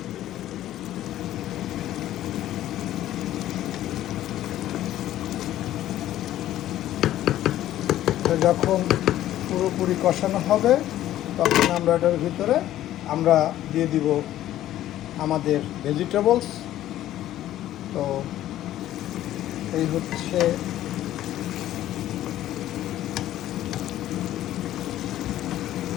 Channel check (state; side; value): quieter; right; 13.3 dB